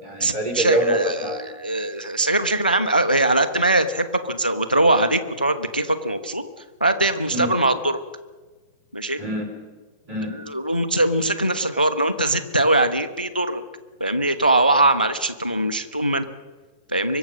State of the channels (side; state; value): both; inverted; correlation -0.55